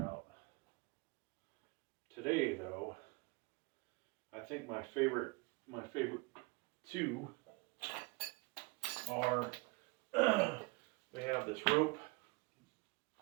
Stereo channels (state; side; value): quieter; left; 27.3 dB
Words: out. Today, though, I think my favorite two are we have this rope.